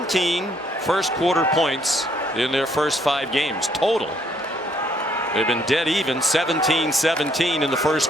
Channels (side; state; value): both; normal; correlation 0.67